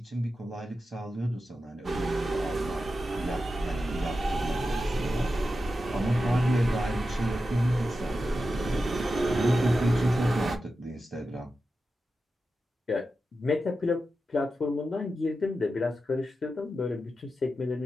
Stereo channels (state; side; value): normal; both; correlation 0.91